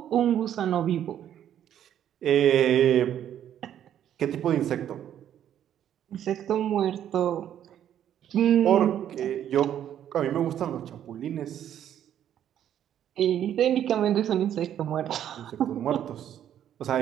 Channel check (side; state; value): left; quieter; 10.4 dB